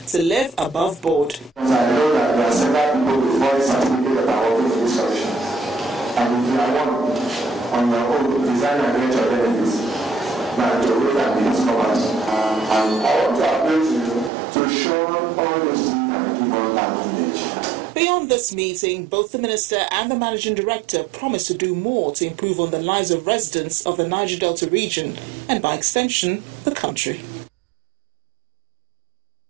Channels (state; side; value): drops out; left; at 14.3 s